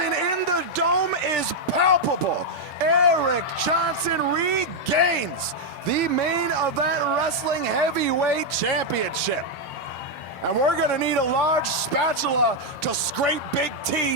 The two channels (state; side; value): normal; both; correlation 0.00